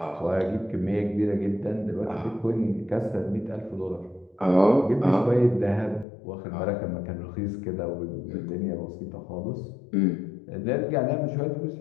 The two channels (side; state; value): right; drops out; at 6.1 s